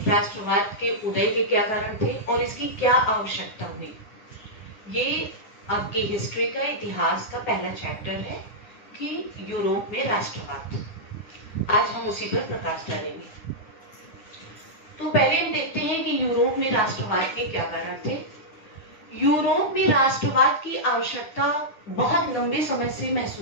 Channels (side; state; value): right; late; 9.9 ms